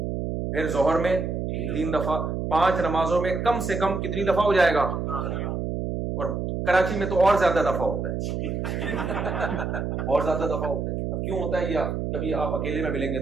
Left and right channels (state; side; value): noise; right; hum, 2 dB below the sound